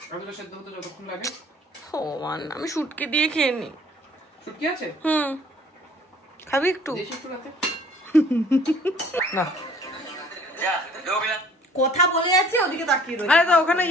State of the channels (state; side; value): normal; both; correlation 0.54